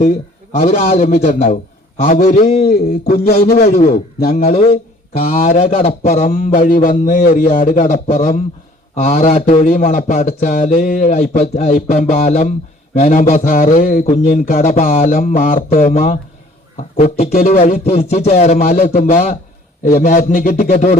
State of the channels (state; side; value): normal; both; correlation 0.55